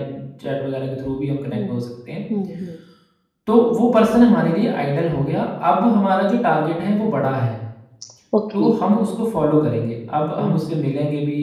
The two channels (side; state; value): both; identical; correlation 1.00